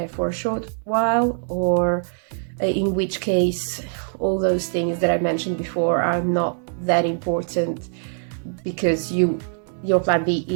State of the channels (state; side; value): silent; left; digital silence